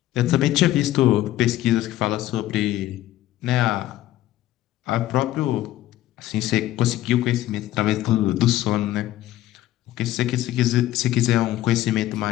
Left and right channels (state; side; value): quieter; right; 14.3 dB